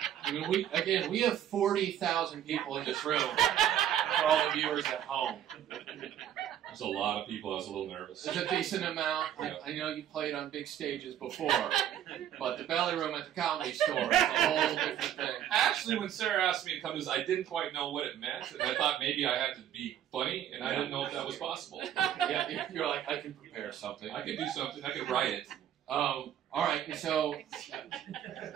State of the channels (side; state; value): left; quieter; 10.6 dB